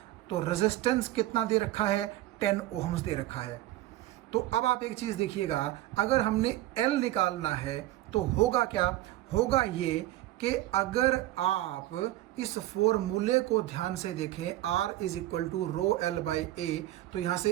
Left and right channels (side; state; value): left; quieter; 15.3 dB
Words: तो रेजिस्टेंस कितना दे रखा है, 10 ओहम्स दे रखा है। तो अब आप एक चीज़ देखिएगा, अगर हमने L निकालना है तो होगा क्या, होगा ये कि अगर आप इस फॉर्मूले को ध्यान से देखें, R is equal to rho L by A, तो यहाँ